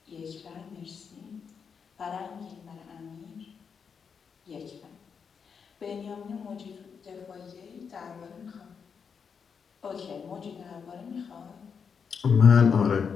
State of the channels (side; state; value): right; quieter; 6.3 dB